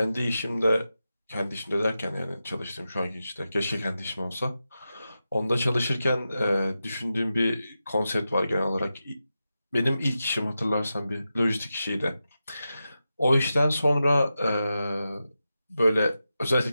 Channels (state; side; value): inverted; both; correlation -0.91